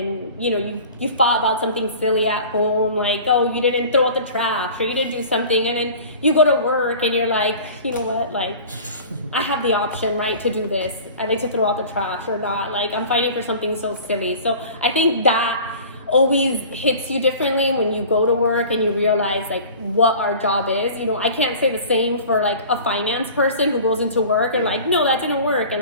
you thought about something silly at home, like, oh, you didn't throw out the trash or you didn't do something. And then you go to work and you're like, you know what, like, I have the option, right, to do this. I like to throw out the trash or not. Like, I'm fighting for something so silly. So I think that always hits you differently when you go to work and you realize like what our job is. I can't say the same for like a finance person who goes into work and like, no, that didn't work,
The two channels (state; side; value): inverted; both; correlation -0.42